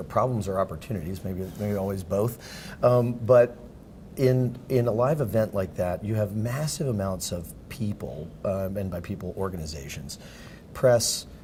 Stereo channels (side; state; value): both; identical; correlation 1.00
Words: problems or opportunities, maybe always both, but in a live event like that, you have massive amounts of people, and by people, organizations, press,